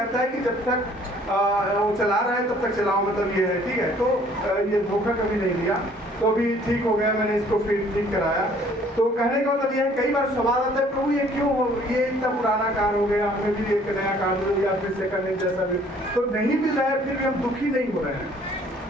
है कि जब तक वो चला रहा है तब तक चलाओ, मतलब ये है, ठीक है। तो ये धोखा कभी नहीं दिया, तो अभी ठीक हो गया, मैंने इसको फिर ठीक कराया। तो कहने का मतलब ये है, कई बार सवाल आता है प्रभु ये क्यों हो, ये इतना पुराना कार हो गया, हमें भी एक नया कार दो या फिर सेकंड हैंड जैसा भी तो नहीं मिल रहा है, फिर भी हम दुखी नहीं हो रहे हैं,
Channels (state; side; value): normal; both; correlation 0.58